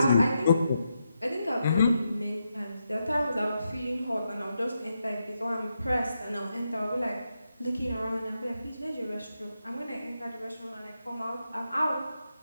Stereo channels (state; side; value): inverted; both; correlation -0.85